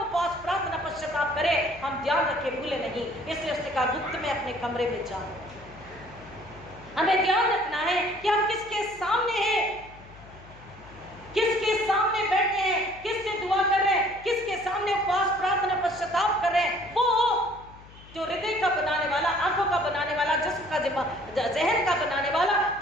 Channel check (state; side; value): noise; left; hum, 21 dB below the sound